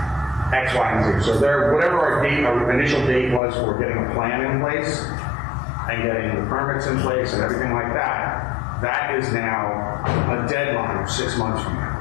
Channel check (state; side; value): drops out; right; at 3.4 s